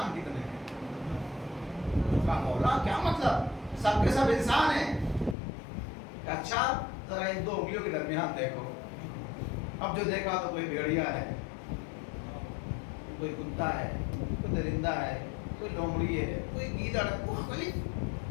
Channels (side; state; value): right; drops out; at 5.4 s